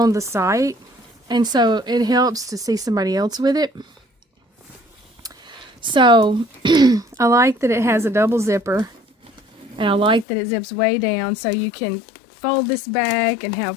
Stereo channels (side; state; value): right; drops out; at 10.2 s